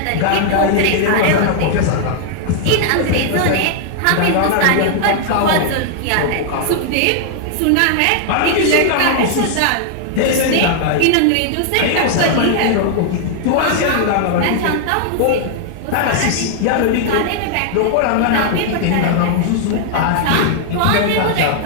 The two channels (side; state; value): both; different; correlation 0.00